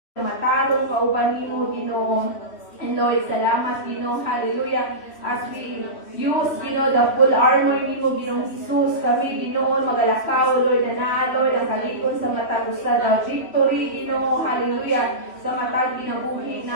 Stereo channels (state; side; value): late; right; 3.1 ms